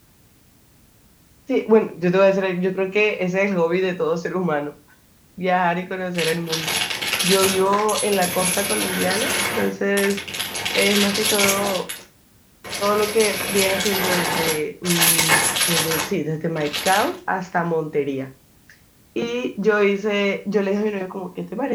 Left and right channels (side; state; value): both; identical; correlation 1.00